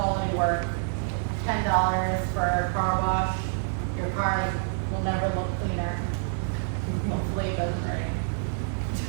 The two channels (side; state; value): left; silent; digital silence